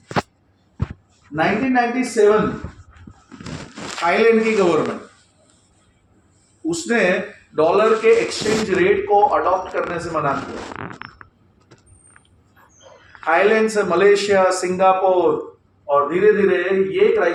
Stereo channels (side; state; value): both; identical; correlation 1.00